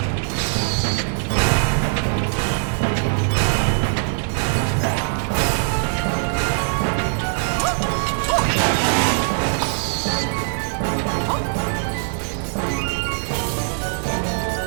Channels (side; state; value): left; silent; digital silence